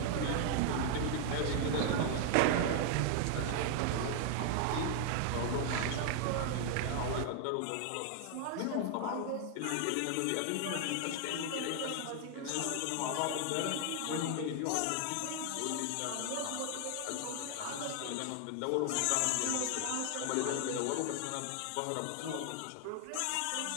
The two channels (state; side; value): different; both; correlation 0.00